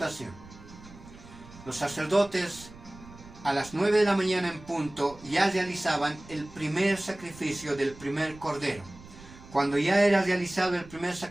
Los sacerdotes a las 9 de la mañana en punto ya realizaban el primer sacrificio del primer cordero. Cuando ya era realizado el primer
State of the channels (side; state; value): right; noise; rumble, 19 dB below the sound